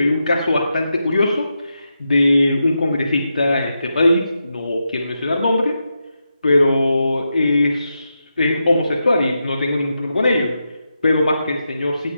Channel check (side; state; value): both; inverted; correlation -0.87